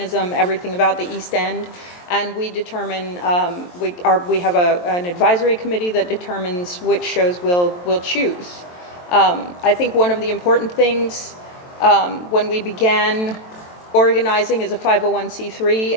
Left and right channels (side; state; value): right; late; 23 ms